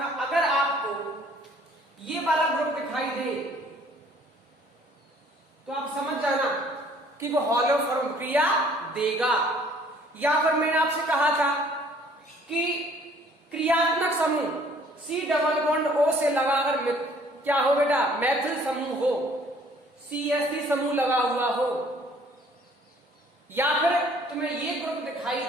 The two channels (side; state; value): both; normal; correlation 0.58